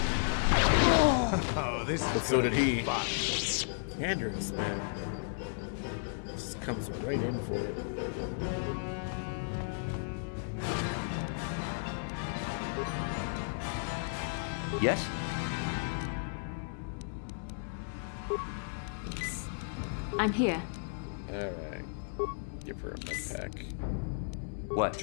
Oh, this but so did he. Andrews, man. Just comes right in for it. Yes? I'm here. Alright. Give her a med pack. What?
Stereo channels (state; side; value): silent; right; digital silence